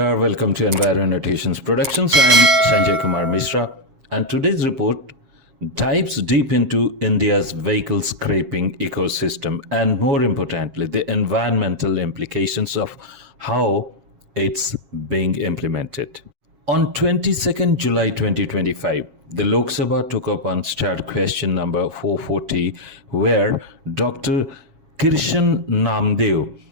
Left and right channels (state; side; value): late; left; 7.4 ms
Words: Welcome to Enviro Annotations Productions. I'm Sanjay Kumar Mishra, and today's report dives deep into India's vehicle scraping ecosystem and, more importantly, the environmental implications of how it's being implemented. On 22nd July 2025, the Lok Sabha took up Unstarred Question No. 440, where Dr. Kirshan Namdev